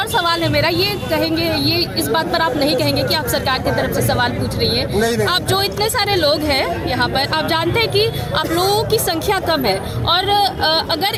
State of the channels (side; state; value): both; identical; correlation 1.00